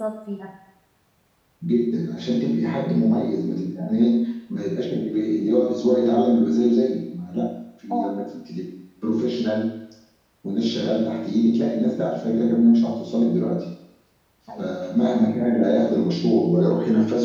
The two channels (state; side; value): identical; both; correlation 1.00